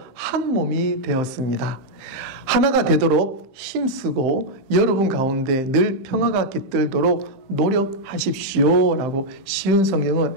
한 몸이 되었습니다. 하나가 되도록 힘쓰고 여러분 가운데 늘 평화가 깃들도록 노력하십시오 라고 쉬운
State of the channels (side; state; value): left; late; 15 ms